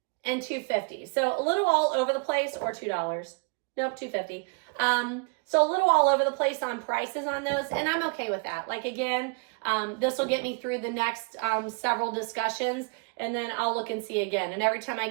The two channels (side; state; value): left; quieter; 35.1 dB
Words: and $2.50. So a little all over the place, or $2. Nope, $2.50. So a little all over the place on prices on those, and I'm okay with that. Like again, this will get me through the next several discussions, and then I'll look and see again. And every time I